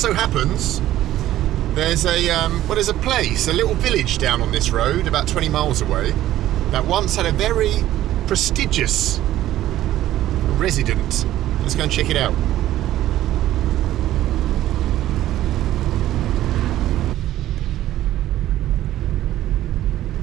so happens there's a place, a little village down on this road, about 20 miles away, that once had a very prestigious resident. Let's go and check it out.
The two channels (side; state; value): left; quieter; 13.7 dB